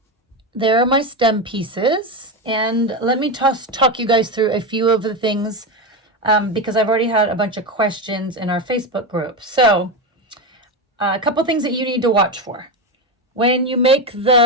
are my stem pieces. And let me talk you guys through a few of the things because I've already had a bunch of questions in our Facebook group. So a couple things that you need to watch for. When you make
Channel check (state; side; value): normal; both; correlation 0.14